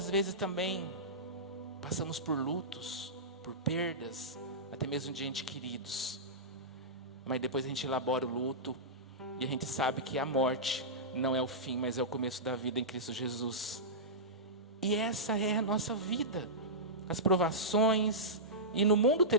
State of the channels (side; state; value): both; normal; correlation -0.15